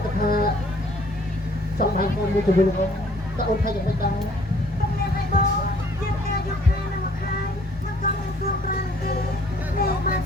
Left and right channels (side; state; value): both; normal; correlation 0.59